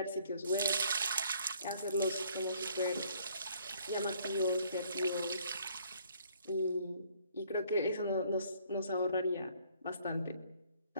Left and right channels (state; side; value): inverted; both; correlation -0.62